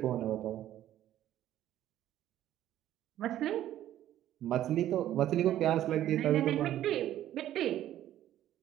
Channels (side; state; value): left; quieter; 12.5 dB